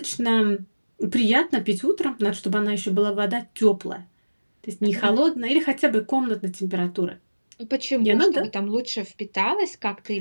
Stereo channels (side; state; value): both; inverted; correlation -1.00